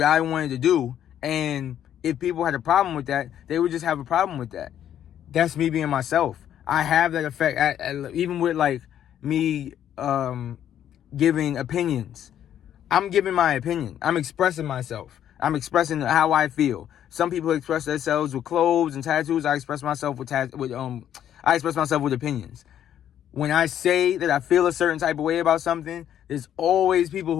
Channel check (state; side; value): quieter; right; 10.4 dB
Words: I wanted to do, and if people had a problem with that, they would just have a problem with that. that's me being myself. I have that effect even with like me giving opinions. I'm giving my opinion. I'm expressing myself. I'm expressing how I feel. Some people express themselves with clothes and tattoos. I express myself with opinions. When I say that I feel a certain type of way about something, there's always people